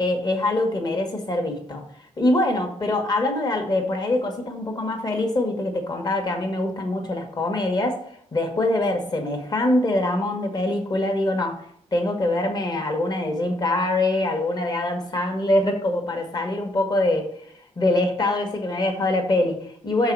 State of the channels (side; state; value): both; normal; correlation 0.72